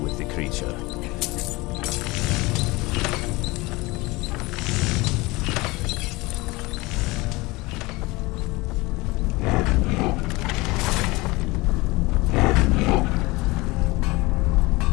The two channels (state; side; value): quieter; right; 22.6 dB